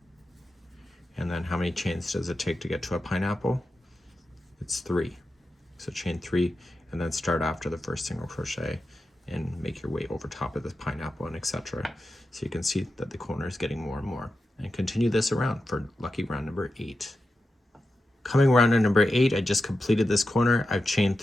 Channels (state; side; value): normal; both; correlation 0.90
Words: And then how many chains does it take to get to a pineapple? It's 3. So chain 3 and then start after the first single crochet and make your way over top of this pineapple and etc. So you can see that the corner is getting more and more. And continue this around for lucky round number 8. Coming around to number 8, I just completed this corner. I've chained